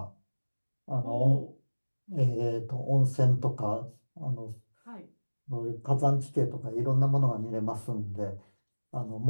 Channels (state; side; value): inverted; both; correlation -1.00